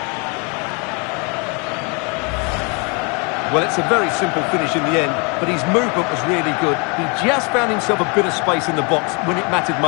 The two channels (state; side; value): quieter; right; 32.9 dB